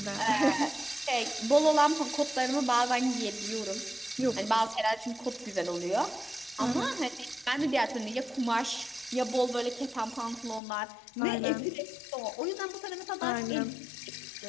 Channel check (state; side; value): drops out; right; at 10.6 s